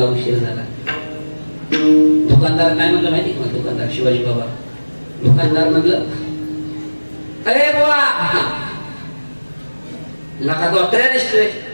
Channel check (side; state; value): both; inverted; correlation -1.00